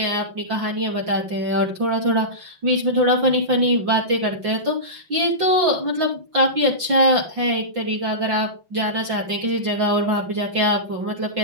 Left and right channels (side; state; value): left; late; 5.7 ms